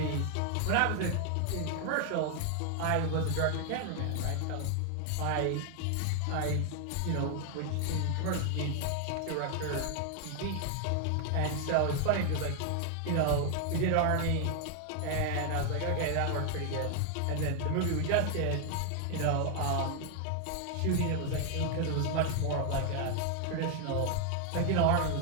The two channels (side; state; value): both; different; correlation 0.00